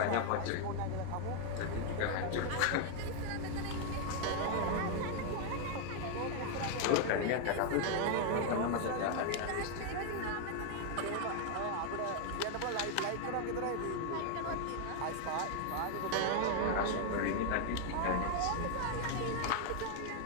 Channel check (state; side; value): different; both; correlation 0.00